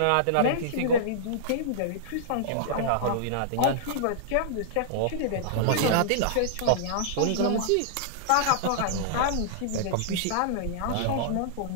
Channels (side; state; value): both; different; correlation -0.02